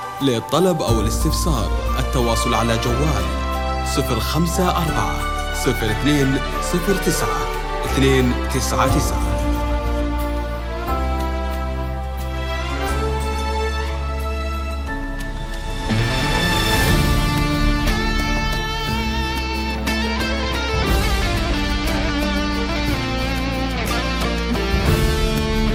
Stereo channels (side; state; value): both; identical; correlation 1.00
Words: للطلب أو الاستفسار التواصل على جوال 054 02 09 299.